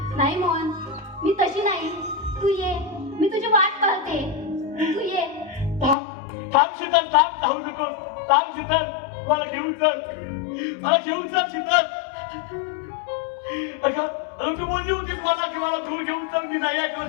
नाही मोहन, मी तशी नाही. तू ये, मी तुझी वाट पाहते. तू ये. थांब शीतल, थांब, जाऊ नकोस. थांब शीतल, मला घेऊन चल. मला घेऊन चल शीतल. अगं तू बोलली होतीस मला की मला दूर घेऊन चल. मी नाही ऐकलं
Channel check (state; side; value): drops out; right; at 6.0 s